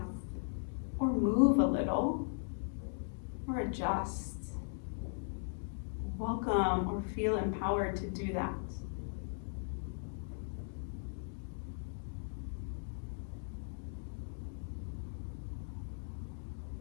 or move a little, or adjust, welcome or feel empowered to do that.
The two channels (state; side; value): silent; right; digital silence